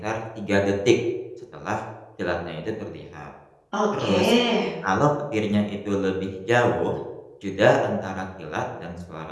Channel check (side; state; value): both; identical; correlation 1.00